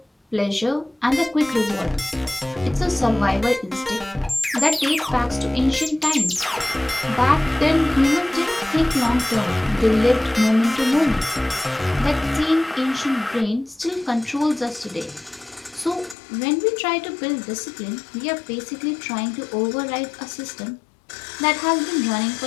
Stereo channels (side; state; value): right; drops out; at 16.2 s